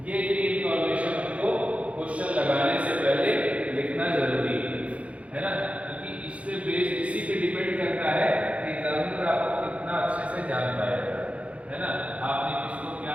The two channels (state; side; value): late; left; 0.064 ms